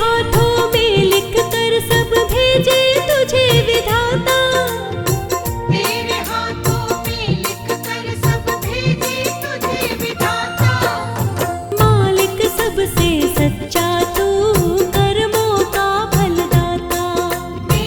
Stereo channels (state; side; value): identical; both; correlation 1.00